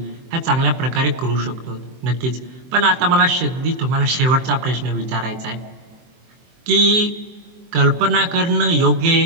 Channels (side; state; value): left; late; 23 ms